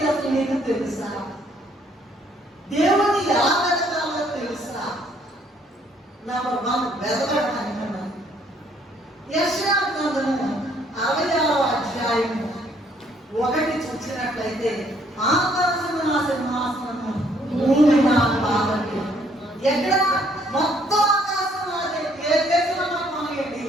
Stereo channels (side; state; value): both; normal; correlation 0.65